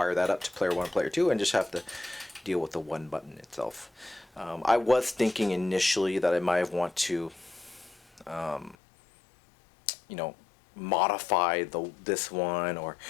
that up to player 1 and player 2 and just have to deal with the 1 button itself. I was thinking initially that I might want to modify this one or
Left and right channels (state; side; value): drops out; right; at 8.8 s